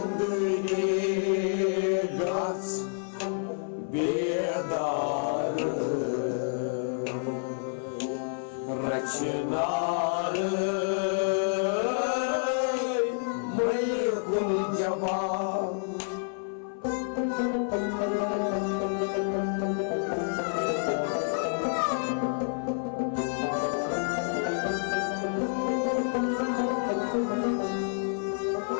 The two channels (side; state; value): right; silent; 56 dB below the other